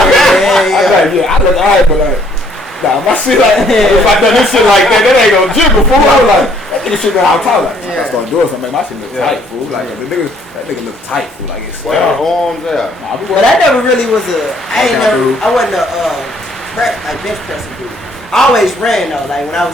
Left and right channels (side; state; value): both; normal; correlation 0.64